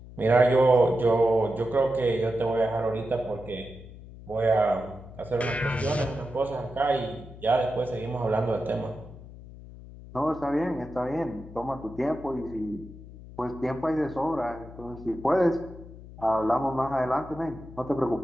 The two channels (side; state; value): left; noise; hum, 16 dB below the sound